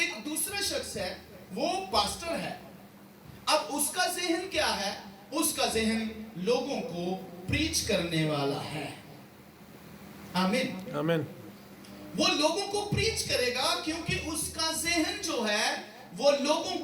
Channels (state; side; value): identical; both; correlation 1.00